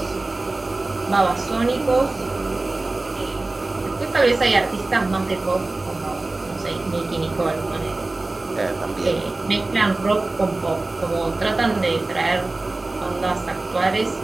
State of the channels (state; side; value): quieter; left; 3.1 dB